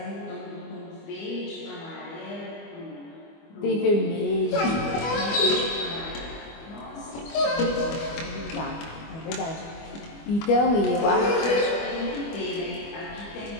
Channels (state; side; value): late; right; 25 ms